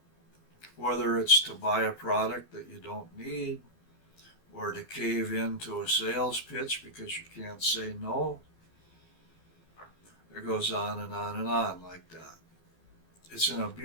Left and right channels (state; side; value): late; right; 12 ms